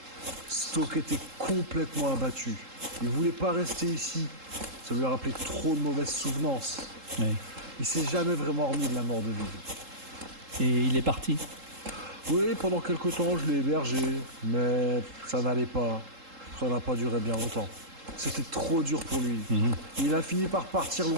Stoke était complètement abattu. Il voulait pas rester ici. Ça lui a rappelé trop de mauvaises souvenances. Ouais. Il s'est jamais vraiment remis de la mort de Vive. Et il est parti? Oui, pendant quelque temps, je l'ai hébergé. Mais ça n'allait pas. Ça n'a pas duré bien longtemps. C'était trop dur pour lui. Il a fini par partir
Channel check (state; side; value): late; left; 3.7 ms